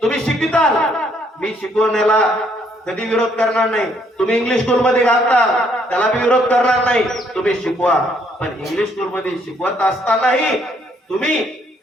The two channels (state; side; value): normal; both; correlation 0.68